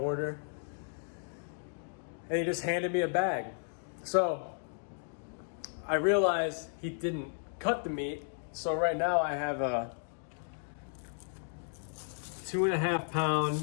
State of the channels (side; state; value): right; silent; digital silence